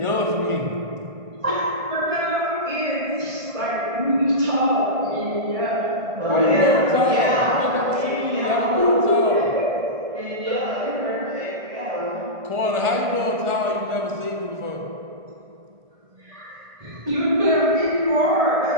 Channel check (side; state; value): left; late; 1.4 ms